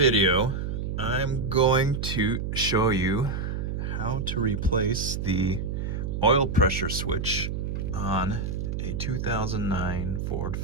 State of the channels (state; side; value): noise; right; hum, 3 dB below the sound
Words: I'm going to show you how to replace the oil pressure switch on a 2009 Ford